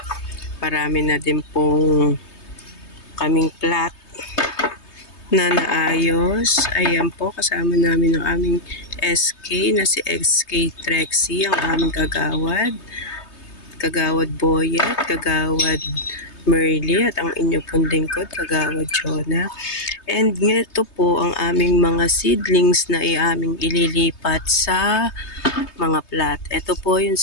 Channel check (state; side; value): late; right; 3.2 ms